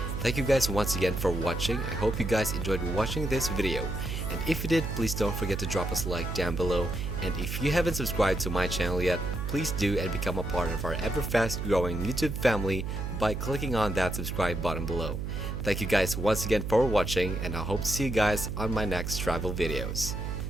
Thank you guys once again for watching. I hope you guys enjoyed watching this video. And if you did, please don't forget to drop us a like down below. And if you haven't subscribed to my channel yet, please do and become a part of our ever fast growing YouTube family by clicking on that subscribe button below. Thank you guys once again for watching, and I hope to see you guys on my next travel videos.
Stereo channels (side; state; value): right; noise; hum, 4 dB below the sound